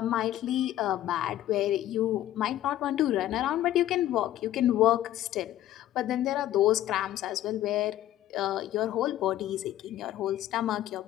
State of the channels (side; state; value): right; quieter; 13.1 dB